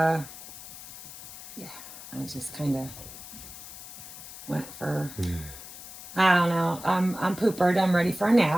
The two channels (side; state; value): left; noise; hiss, 14 dB below the sound